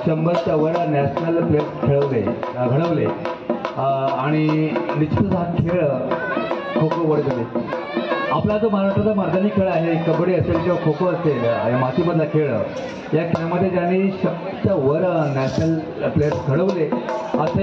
100च्या वर नॅशनल प्लेयर घडवले आणि निश्चितच हा खेळ खो खो वडगले. आपला जो महाराष्ट्राचा मैदानी खेळ आहे, कबड्डी असेल किंवा खो खो असेल, मातीमधला खेळ, या खेळामध्ये ज्यांनी 100च्या वर नॅशनल प्लेयर्स घडवले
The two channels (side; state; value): both; identical; correlation 1.00